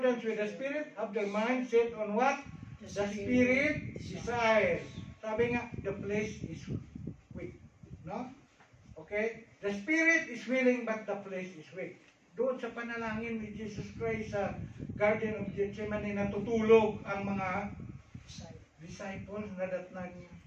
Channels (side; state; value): both; identical; correlation 1.00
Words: with the Spirit have their minds set on what? The Spirit desires. Sabi nga, the flesh is weak. No? Okay? The Spirit is willing but the flesh is weak. Doon sa panalangin ni Jesus Christ sa Garden of Gethsemane, natutulog ang mga disciples na datnan niya.